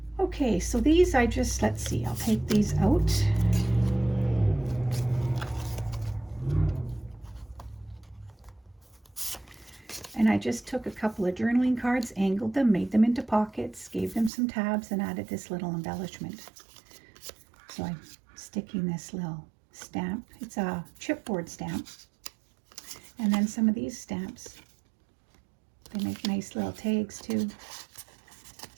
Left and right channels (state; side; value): drops out; left; at 14.3 s